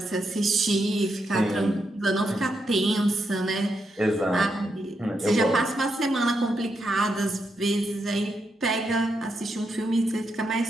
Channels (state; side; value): normal; both; correlation 0.82